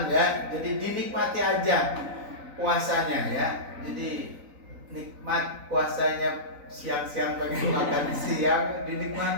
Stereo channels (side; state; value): left; late; 4.0 ms